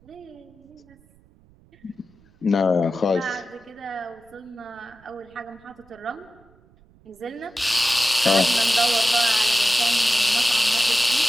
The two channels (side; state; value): right; noise; rumble, 29 dB below the sound